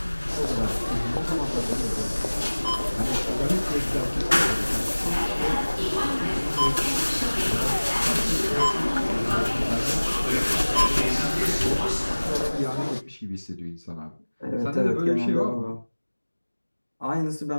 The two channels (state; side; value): inverted; both; correlation -1.00